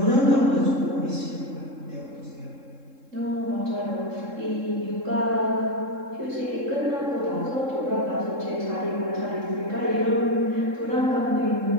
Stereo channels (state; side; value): late; left; 3.7 ms